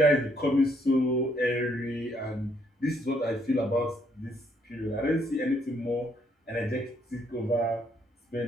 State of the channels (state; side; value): normal; both; correlation 0.70